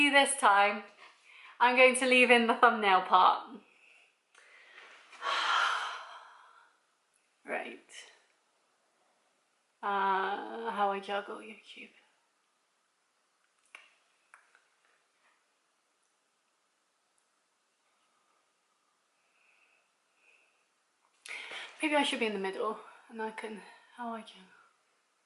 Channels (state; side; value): identical; both; correlation 1.00